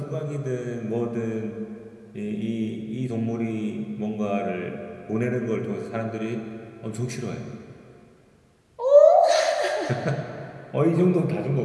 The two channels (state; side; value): identical; both; correlation 1.00